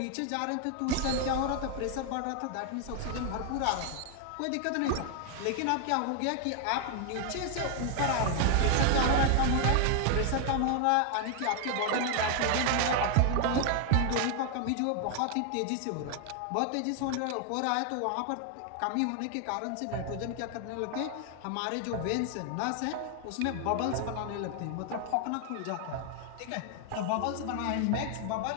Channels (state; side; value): different; both; correlation 0.00